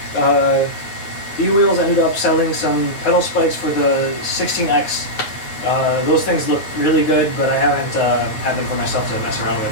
E-Wheels ended up selling some pedal spikes for the 16X. Those things look really good, but I haven't had them for myself to mess around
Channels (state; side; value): late; right; 9.1 ms